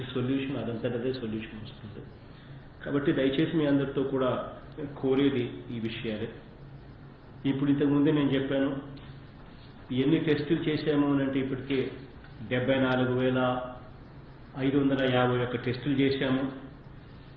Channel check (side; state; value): both; identical; correlation 1.00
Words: సొల్యూషన్ అదంతటదే సొల్యూషన్ వస్తుంది. కాబట్టి దయచేసి మీ అందరితో కూడా కోరేది ఈ విషయాలే. ఇప్పుడు ఇంతకుముందే నేను చెప్పాను ఎన్ని టెస్టులు చేశాము అని అంటే ఇప్పటికే 74,551 టెస్టులు చేశాము.